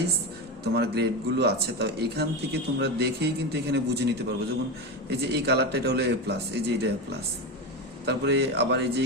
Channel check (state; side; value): normal; both; correlation 0.19